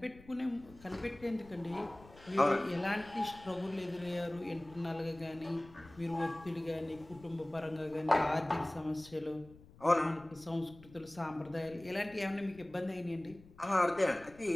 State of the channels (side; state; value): left; noise; rumble, 22 dB below the sound